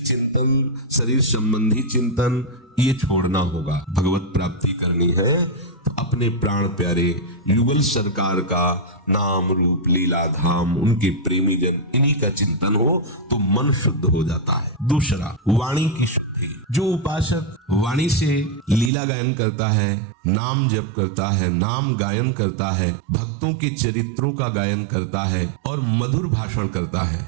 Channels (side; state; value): left; drops out; at 18.9 s